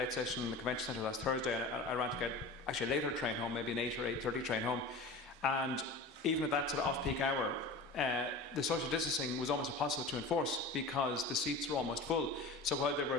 session in the Convention Centre last Thursday, I ran to get actually a later train home, maybe an 8 or 8:30 train home. And even at that sort of off-peak hour, the social distancing was almost impossible to enforce because the seats were almost full. So while there were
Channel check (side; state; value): right; quieter; 3.1 dB